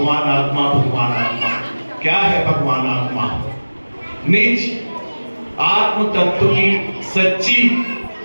आत्मा, भगवान आत्मा। क्या है भगवान आत्मा? निज आत्म तत्व की सच्ची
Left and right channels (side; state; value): both; inverted; correlation -1.00